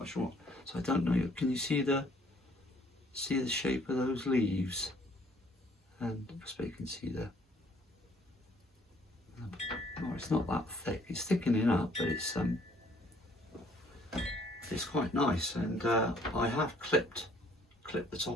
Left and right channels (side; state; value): both; normal; correlation 0.61